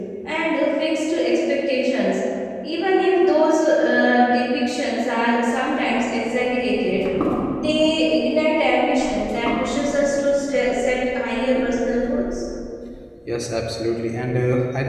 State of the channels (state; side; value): identical; both; correlation 1.00